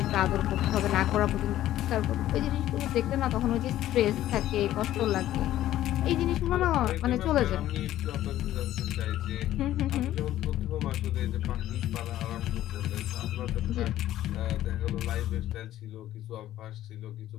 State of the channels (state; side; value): quieter; right; 13.4 dB